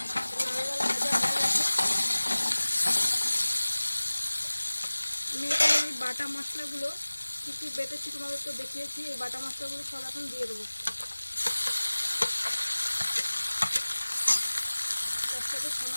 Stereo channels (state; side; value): inverted; both; correlation -1.00